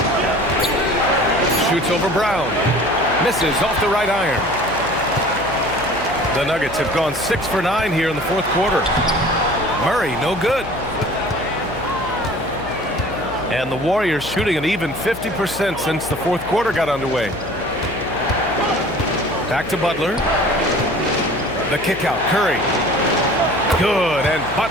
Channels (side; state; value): left; noise; hum, 15 dB below the sound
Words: Shoots over Brown. Misses off the right iron. The Nuggets have gone 6 for 9 here in the fourth quarter. Murray, no good. And the Warriors shooting an even 50% since the fourth quarter got underway. Back to Butler. The kick out. Curry. Good. And